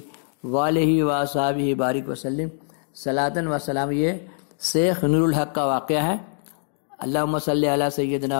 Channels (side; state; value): right; silent; digital silence